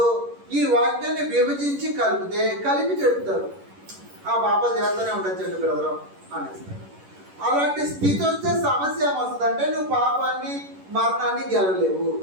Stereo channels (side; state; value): left; late; 11 ms